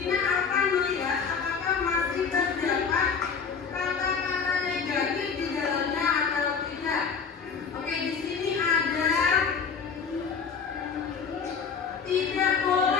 akan melihat apakah masih terdapat kata-kata negatif di dalamnya atau tidak. Oke, di sini ada tidak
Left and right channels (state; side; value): quieter; right; 6.0 dB